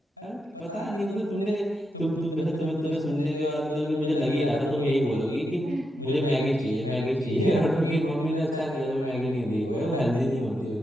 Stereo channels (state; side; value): normal; both; correlation 0.85